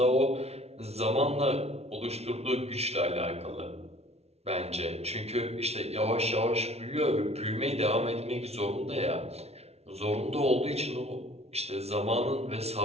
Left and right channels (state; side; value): late; left; 0.31 ms